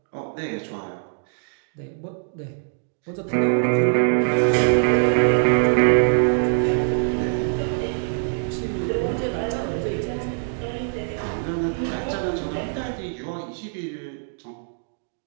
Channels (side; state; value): left; silent; digital silence